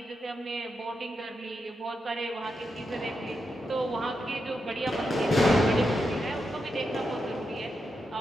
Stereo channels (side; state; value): both; normal; correlation 0.85